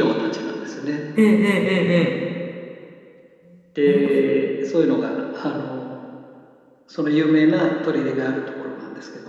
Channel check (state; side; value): identical; both; correlation 1.00